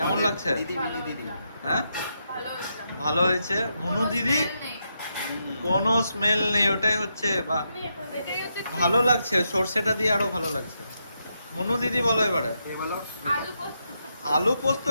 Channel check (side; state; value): both; inverted; correlation -0.82